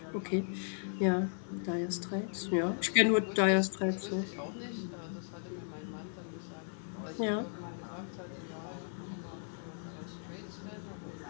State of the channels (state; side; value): silent; right; 54 dB below the other